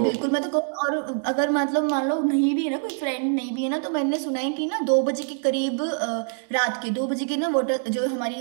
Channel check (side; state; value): left; silent; 62 dB below the other